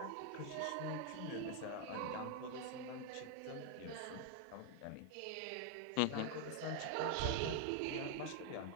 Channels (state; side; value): different; both; correlation 0.00